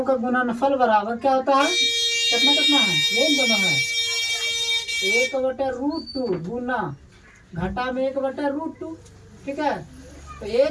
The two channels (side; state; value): both; identical; correlation 1.00